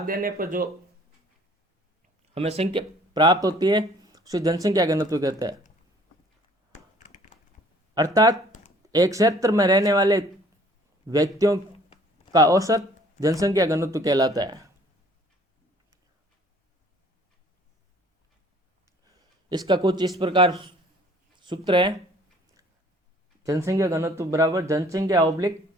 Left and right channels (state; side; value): normal; both; correlation 0.56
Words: देने पर जो हमें संख्या प्राप्त होती है उसे जनसंख्या घनत्व कहते हैं। अर्थात एक क्षेत्र में रहने वाले व्यक्तियों का औसत जनसंख्या घनत्व कहलाता है। इसका कुछ इस प्रकार सूत्र है, जनसंख्या घनत्व बराबर जनसंख्या ऑब्लिक